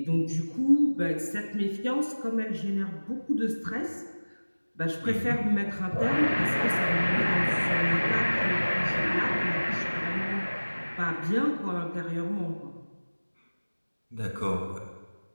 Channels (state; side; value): inverted; both; correlation -1.00